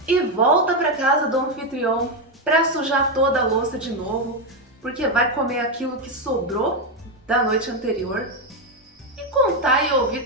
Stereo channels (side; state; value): both; normal; correlation 0.07